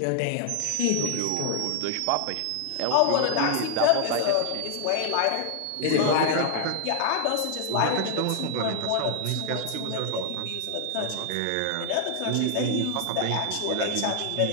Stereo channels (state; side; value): different; both; correlation 0.00